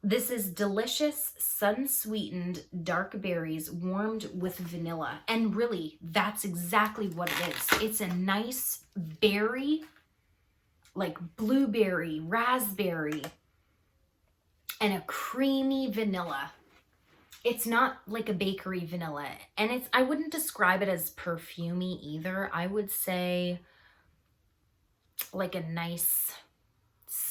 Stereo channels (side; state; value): both; identical; correlation 1.00